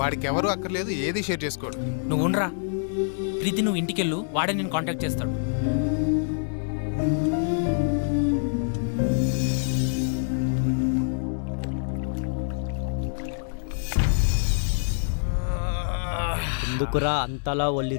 ఎవరు అక్కర్లేదు, ఏది షేర్ చేసుకోడు. నువ్వు ఉండరా ప్రీతి, నువ్వు ఇంటికెళ్ళు, వాడే నేను కాంటాక్ట్ చేస్తాడు. ఎందుకురా అంతలా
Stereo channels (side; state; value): right; silent; digital silence